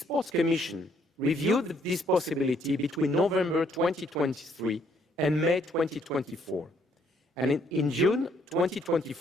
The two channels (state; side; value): normal; both; correlation 0.68